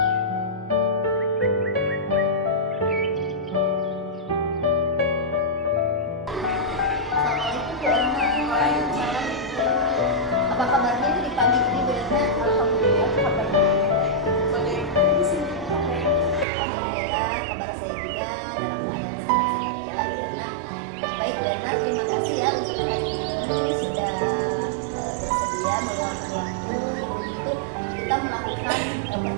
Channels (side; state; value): left; drops out; at 16.4 s